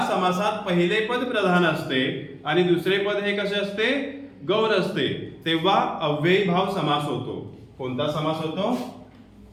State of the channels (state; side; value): identical; both; correlation 1.00